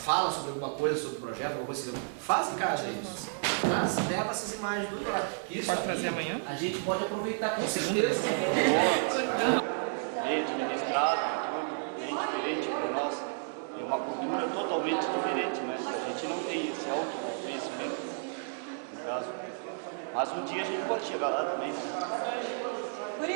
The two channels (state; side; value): silent; left; digital silence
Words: sobre alguma coisa, sobre o projeto, alguma coisa assim, faz em casa isso. Mas leva essas imagens do lado. Isso pode trazer amanhã? A gente pode aproveitar com certeza. Bem administrado, tudo bem diferente para nós. É uma cultura totalmente diferente, né? A gente não tem esse autoconhecimento, no caso. Mas um dia a gente pode chegar lá também. Por